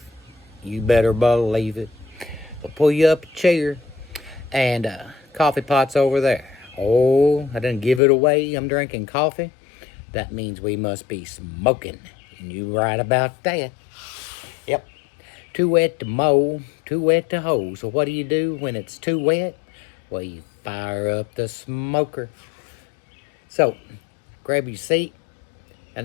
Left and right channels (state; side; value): drops out; right; at 8.0 s